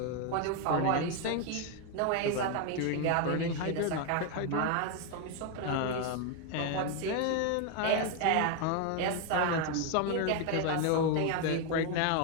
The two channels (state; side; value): different; both; correlation 0.01